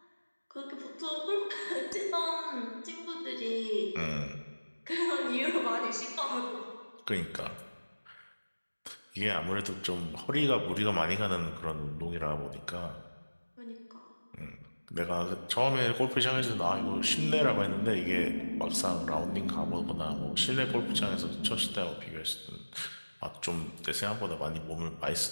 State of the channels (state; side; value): inverted; both; correlation -1.00